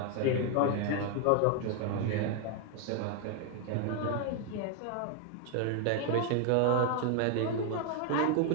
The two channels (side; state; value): both; different; correlation 0.01